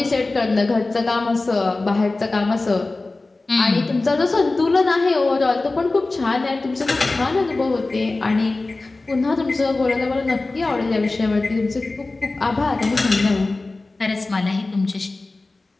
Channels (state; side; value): quieter; right; 3.3 dB